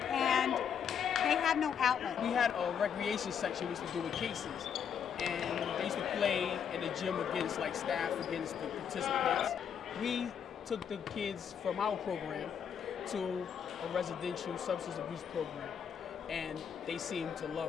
and they have no outlet. We had a recreation section we used to do with cases. And they used to play in the gym against staff, against the participants. We took the kids from our program to a residential substance abuse program, and they seemed to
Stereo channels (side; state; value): right; quieter; 7.7 dB